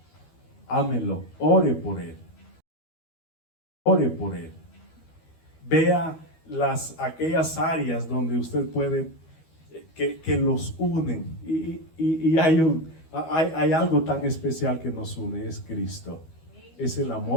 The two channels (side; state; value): right; late; 12 ms